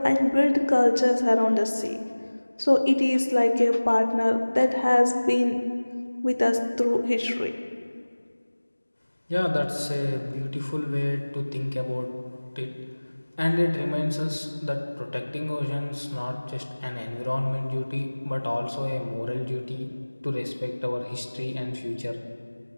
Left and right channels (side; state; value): both; inverted; correlation -1.00